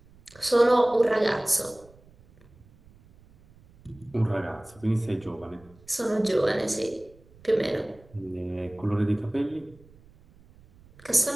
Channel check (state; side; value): noise; right; rumble, 26 dB below the sound